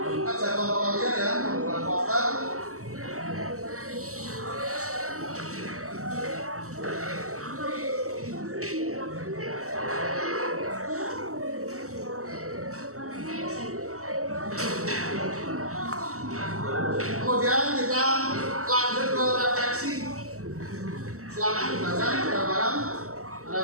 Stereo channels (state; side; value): late; left; 0.64 ms